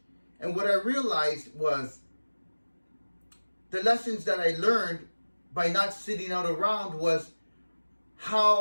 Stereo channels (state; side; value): inverted; both; correlation -1.00